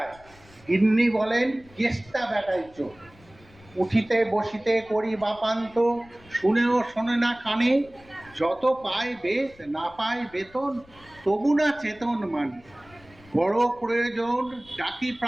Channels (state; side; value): noise; left; rumble, 26 dB below the sound